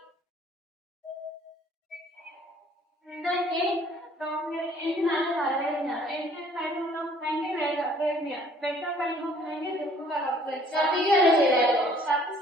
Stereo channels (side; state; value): both; normal; correlation 0.57